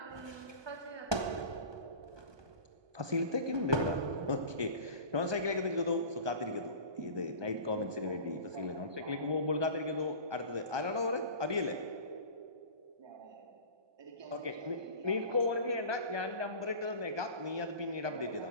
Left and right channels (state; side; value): late; left; 1.2 ms